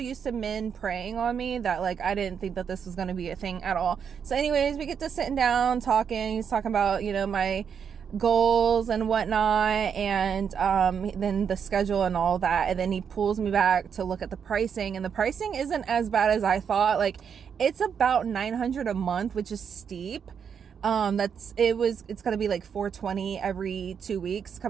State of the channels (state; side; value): quieter; left; 7.2 dB